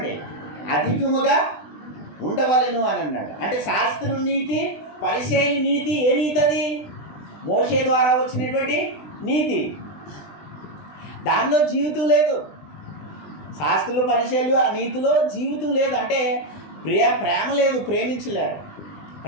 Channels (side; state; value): right; late; 20 ms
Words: అధికముగా ఉండవలెను అని అన్నాడు. అంటే శాస్త్రుల నీతి, పరిసయ్యుల నీతి ఏ నీతి? అది మోషే ద్వారా వచ్చినటువంటి నీతి. దానిలో జీవితం లేదు. శాస్త్రులు, పరిసయ్యులు ఆ నీతిలో జీవితం లేదు. అంటే ప్రేమ లేదు, ప్రేమించలేరు.